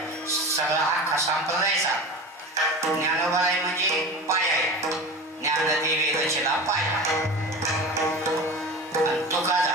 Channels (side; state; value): both; normal; correlation 0.32